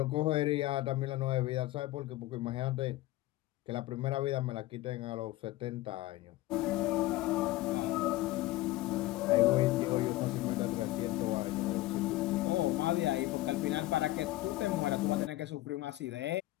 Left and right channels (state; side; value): quieter; right; 17.4 dB